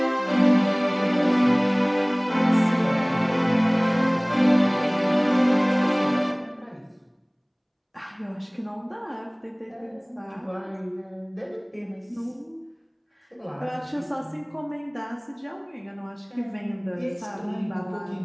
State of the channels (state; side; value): identical; both; correlation 1.00